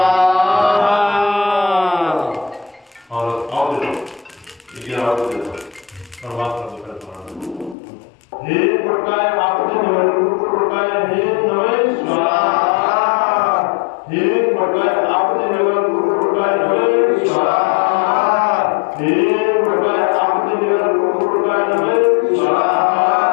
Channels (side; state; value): right; drops out; at 7.8 s